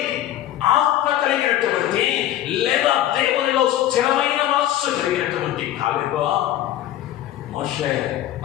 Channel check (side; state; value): right; quieter; 12.9 dB